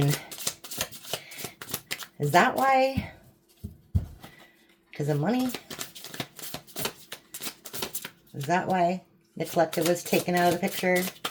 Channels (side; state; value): both; identical; correlation 1.00